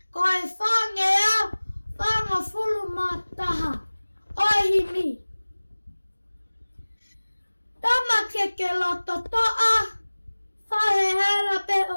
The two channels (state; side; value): inverted; both; correlation -1.00